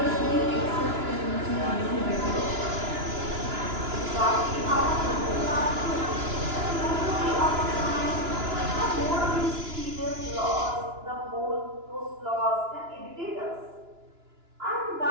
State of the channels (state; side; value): late; left; 2.9 ms